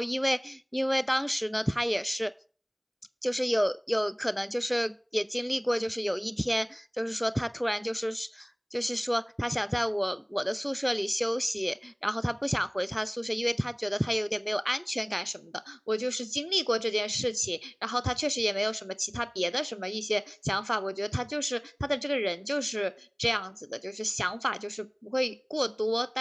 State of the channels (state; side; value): identical; both; correlation 1.00